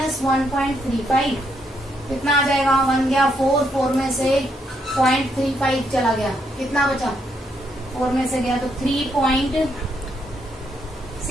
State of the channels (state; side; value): normal; both; correlation 0.76